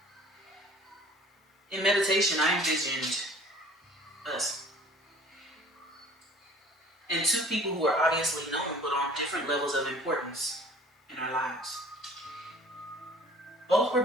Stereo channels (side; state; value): both; normal; correlation 0.50